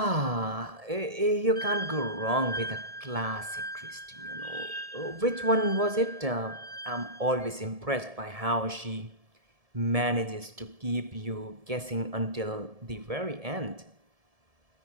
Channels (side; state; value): left; late; 1.7 ms